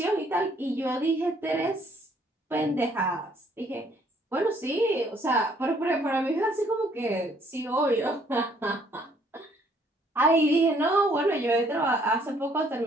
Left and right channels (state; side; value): normal; both; correlation 0.64